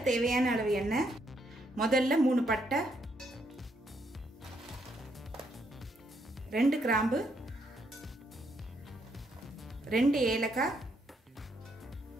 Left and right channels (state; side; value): normal; both; correlation 0.74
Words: தேவையான அளவு எண்ணெய். முதல்ல 3 பட்டை, 2 கிராம்பு, 2 ஏலக்காய்,